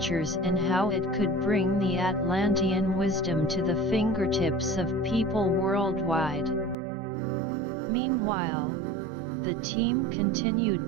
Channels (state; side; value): drops out; left; at 6.8 s